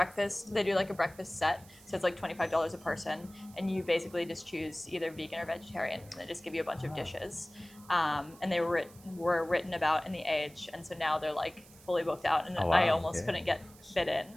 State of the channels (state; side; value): noise; right; hiss, 23 dB below the sound